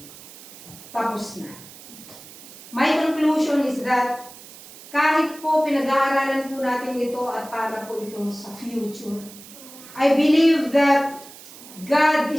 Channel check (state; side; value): noise; right; hiss, 18 dB below the sound